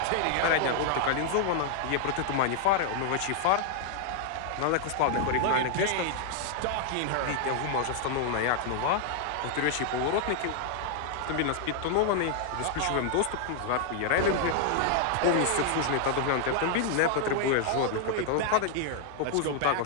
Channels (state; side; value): different; both; correlation 0.00